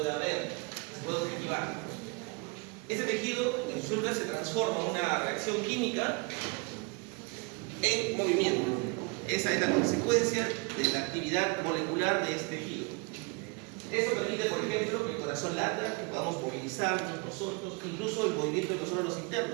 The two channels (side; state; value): left; quieter; 30.3 dB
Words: ver, que se pueda observar. Ese tejido en resulta se transforma en una reacción química en movimiento. Esa es la consecuencia de la actividad molecular de este tejido. Eso permite, por ejemplo, que el corazón lata, que podamos movilizarnos nosotros, incluso el movimiento de los órganos